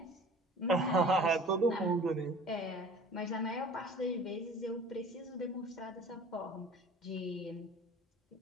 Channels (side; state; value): both; normal; correlation 0.45